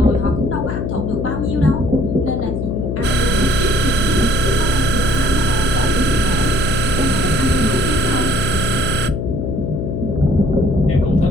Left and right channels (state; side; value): noise; left; hum, 3 dB below the sound